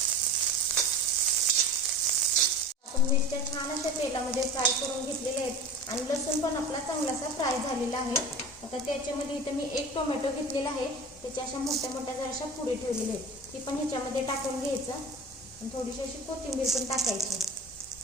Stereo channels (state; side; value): normal; both; correlation 0.33